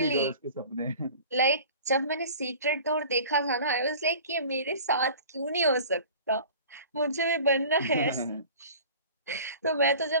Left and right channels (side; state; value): both; inverted; correlation -0.42